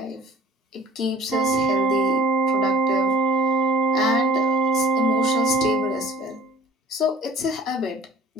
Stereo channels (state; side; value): normal; both; correlation 0.48